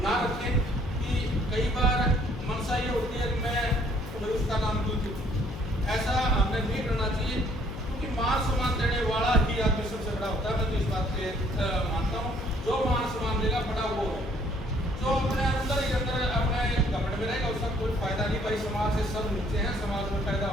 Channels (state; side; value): noise; left; hum, 10 dB below the sound